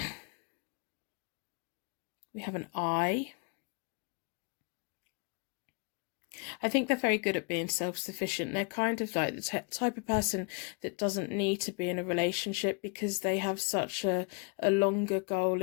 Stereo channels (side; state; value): right; quieter; 33.4 dB